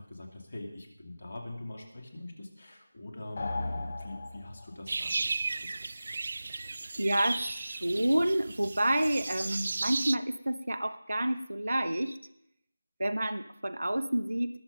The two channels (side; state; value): both; inverted; correlation -0.97